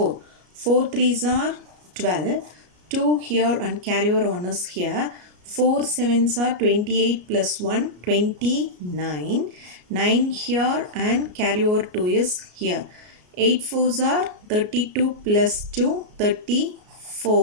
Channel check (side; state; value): left; late; 33 ms